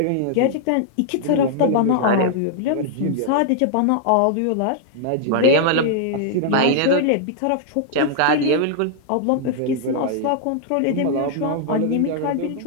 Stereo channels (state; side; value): different; both; correlation -0.01